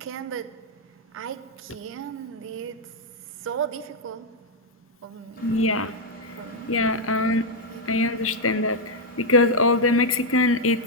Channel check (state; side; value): normal; both; correlation 0.00